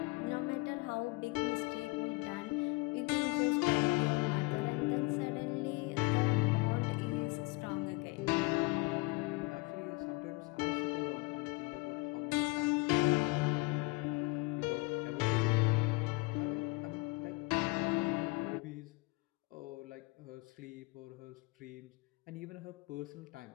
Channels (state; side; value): quieter; right; 25.8 dB